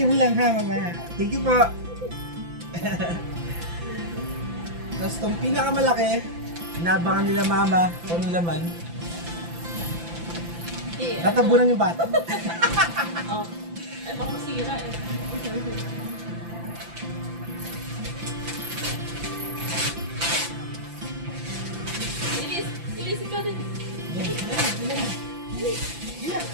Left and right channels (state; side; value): late; left; 5.9 ms